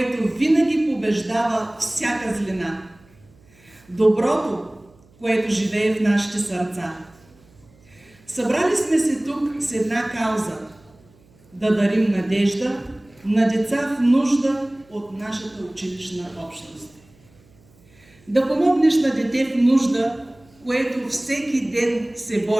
винаги побеждава всяка злина. Доброто, което живее в нашите сърца. Събрали сме се тук с една кауза – да дарим надежда на деца в нужда от нашата училищна общност. Да помогнеш на дете в нужда, което всеки ден се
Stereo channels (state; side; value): noise; right; hum, 29 dB below the sound